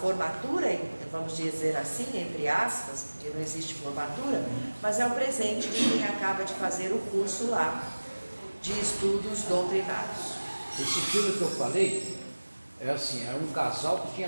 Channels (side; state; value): both; inverted; correlation -1.00